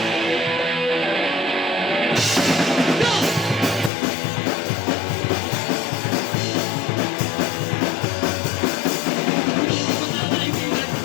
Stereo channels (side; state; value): right; drops out; at 3.9 s